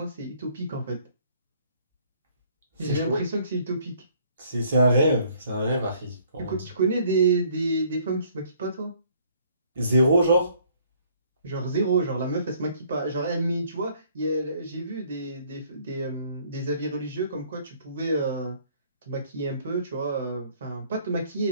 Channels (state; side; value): inverted; both; correlation -0.61